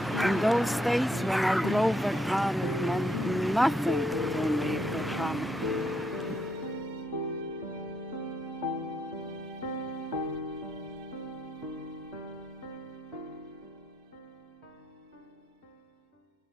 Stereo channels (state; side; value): normal; both; correlation 0.77